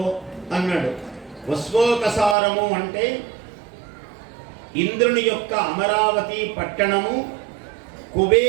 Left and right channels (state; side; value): drops out; left; at 2.4 s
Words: అన్నాడు. వస్వోకసారము అంటే ఇంద్రుని యొక్క అమరావతి పట్టణము,